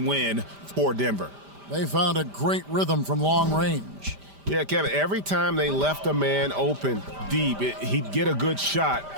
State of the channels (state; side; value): late; left; 5.0 ms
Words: win for Denver. They found a great rhythm from long range. Yeah, Kevin, every time they left a man open deep, he'd get a good shot